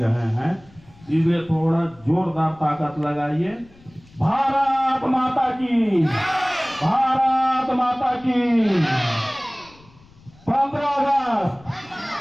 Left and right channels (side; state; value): left; noise; rumble, 26 dB below the sound